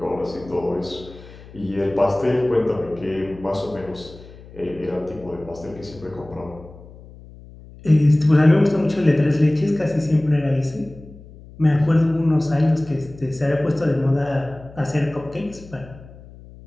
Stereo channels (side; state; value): left; noise; hum, 19 dB below the sound